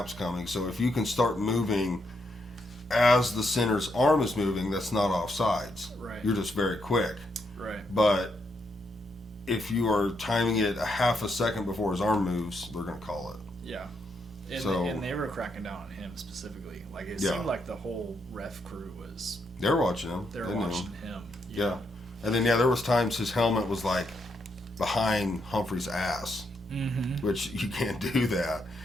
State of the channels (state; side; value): normal; both; correlation 0.79